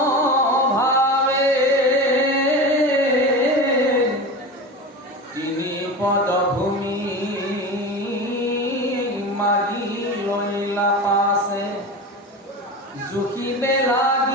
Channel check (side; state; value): both; normal; correlation 0.28